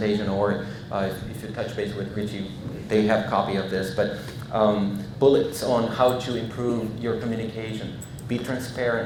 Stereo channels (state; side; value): identical; both; correlation 1.00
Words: or if you touch base with Richie, they have a copy of this. But bullets on how to improve your communication. Be